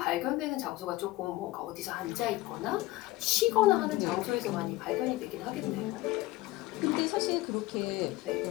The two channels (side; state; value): right; quieter; 18.5 dB